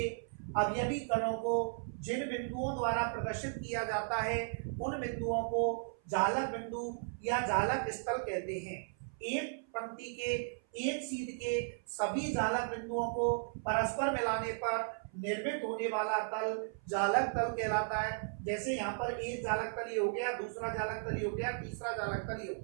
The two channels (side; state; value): left; silent; 54 dB below the other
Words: अवयवी कणों को जिन बिंदुओं द्वारा प्रदर्शित किया जाता है, उन बिंदुओं को जालक बिंदु या जालक स्थल कहते हैं। एक पंक्ति के एक सीध के सभी जालक बिंदुओं को परस्पर मिलाने पर निर्मित होने वाला तल जालक तल कहलाता है। जैसे यहाँ पर एक जालक तल ये हो गया, दूसरा जालक तल ये हो गया, तीसरा जालक तल ये हो